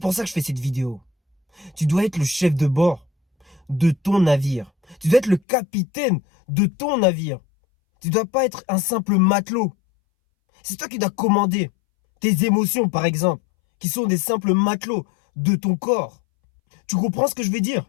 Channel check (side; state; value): right; drops out; at 5.4 s